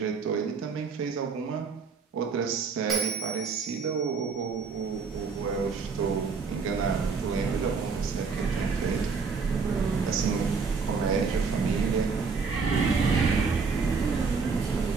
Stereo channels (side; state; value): left; quieter; 5.0 dB